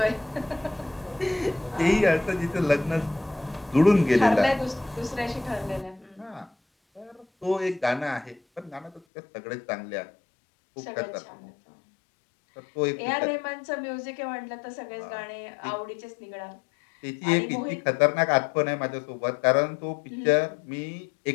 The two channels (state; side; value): drops out; right; at 9.0 s